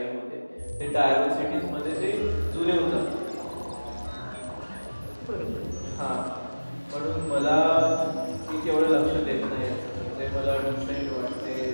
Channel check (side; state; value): both; inverted; correlation -1.00